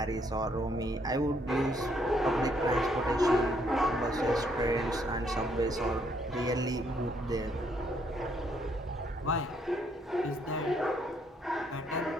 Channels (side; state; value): both; normal; correlation 0.70